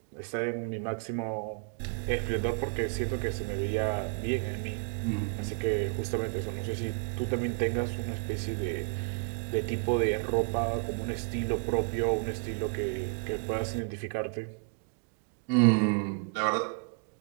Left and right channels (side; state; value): left; quieter; 39.3 dB